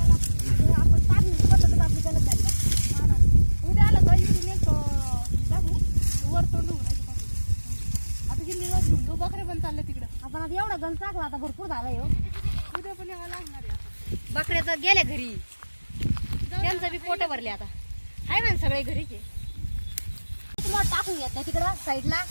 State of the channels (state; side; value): inverted; both; correlation -1.00